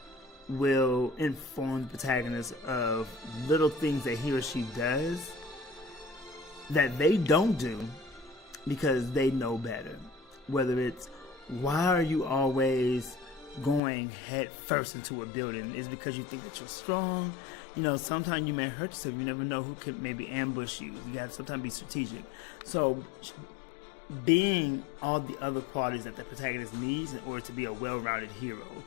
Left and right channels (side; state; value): right; drops out; at 13.8 s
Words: will inform the protagonist of little things that he or she does that they don't do because they know better. Whether it's, why are you always going head first into a building? Is because you think that you're strong? You know, sometimes you may hurt yourself. You never know who could maybe ambush you. You gotta sometimes be strategic. So being all the other qualities that the protagonist needs in order to be a well-rounded hero